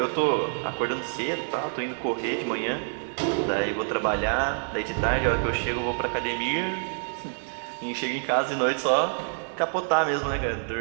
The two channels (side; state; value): left; silent; digital silence